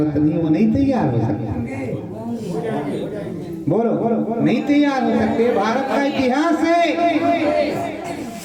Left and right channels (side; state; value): both; identical; correlation 1.00